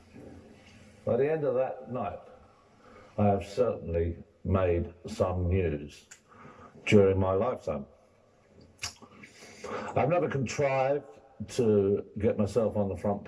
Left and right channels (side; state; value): both; identical; correlation 1.00